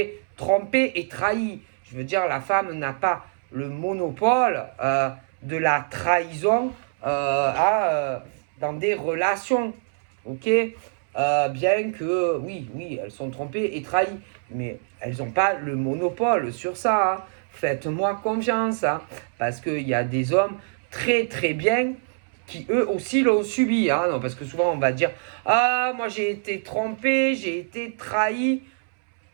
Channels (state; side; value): silent; left; 62 dB below the other